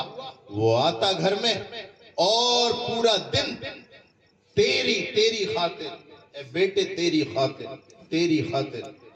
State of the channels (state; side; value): identical; both; correlation 1.00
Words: وہ آتا گھر میں، اور پورا دن تیری خاطر اے بیٹے، تیری خاطر